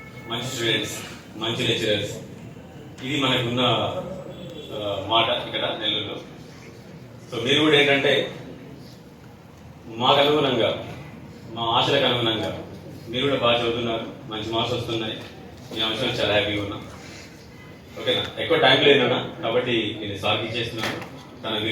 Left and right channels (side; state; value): both; identical; correlation 1.00